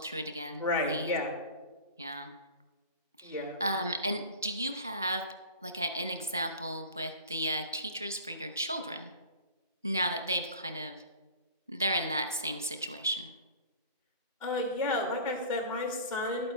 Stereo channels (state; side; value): inverted; both; correlation -0.38